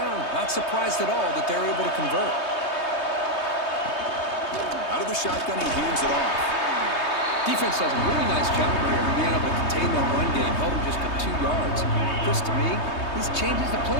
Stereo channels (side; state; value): right; late; 3.2 ms